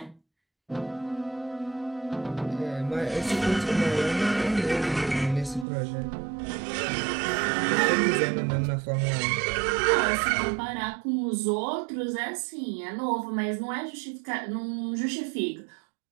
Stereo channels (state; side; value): drops out; left; at 5.7 s